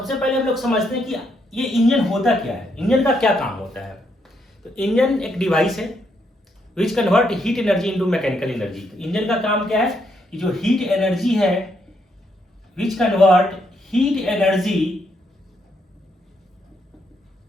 पहले हम लोग समझते हैं कि ये इंजन होता क्या है, इंजन का क्या काम होता है। तो इंजन एक डिवाइस है which convert heat energy into mechanical energy. तो इंजन का काम क्या है कि जो हीट एनर्जी है which convert heat energy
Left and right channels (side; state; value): both; normal; correlation 0.76